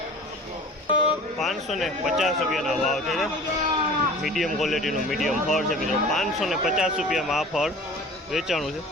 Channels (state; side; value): normal; both; correlation 0.42